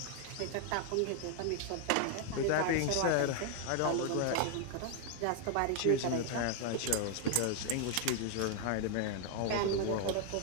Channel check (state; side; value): different; both; correlation 0.00